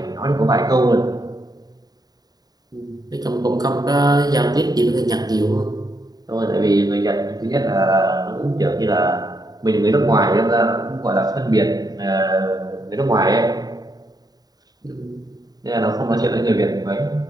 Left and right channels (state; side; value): late; left; 0.19 ms